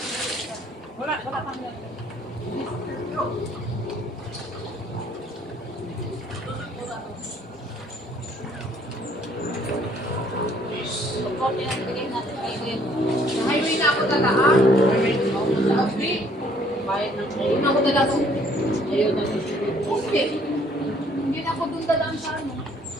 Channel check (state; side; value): normal; both; correlation 0.61